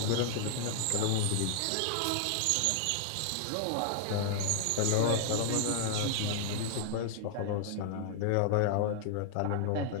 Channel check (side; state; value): both; different; correlation 0.00